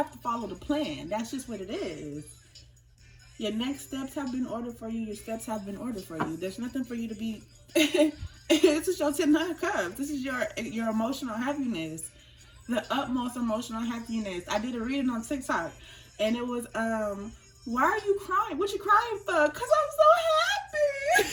to follow the plan. That's just what it is. Your next steps have been ordered for you. Your steps have been ordered for you. There's nothing for you to be... This is your 10 of Cups. This is your emotional happiness. The utmost emotional happiness. I did a reading on TikTok. And it was, why are you crying? What you crying for? Because I'm so happy.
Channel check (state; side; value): identical; both; correlation 1.00